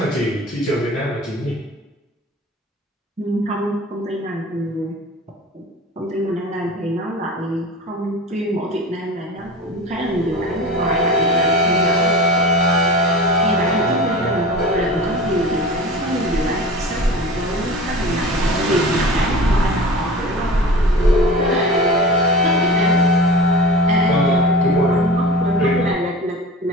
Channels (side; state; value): both; normal; correlation 0.35